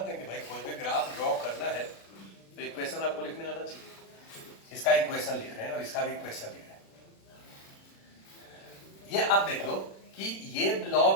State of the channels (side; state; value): right; late; 36 ms